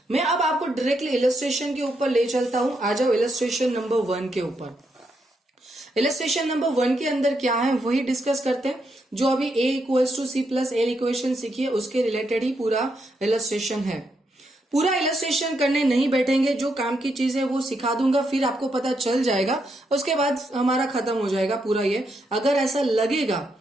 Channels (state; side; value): normal; both; correlation 0.80